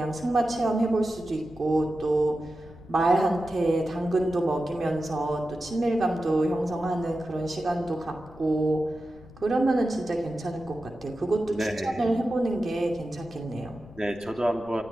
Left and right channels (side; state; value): left; noise; rumble, 20 dB below the sound